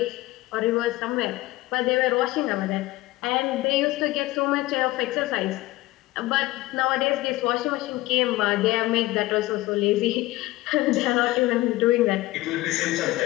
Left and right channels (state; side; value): quieter; right; 18.5 dB